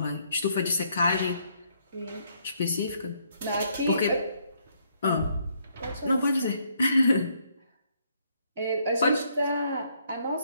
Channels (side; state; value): both; inverted; correlation -0.71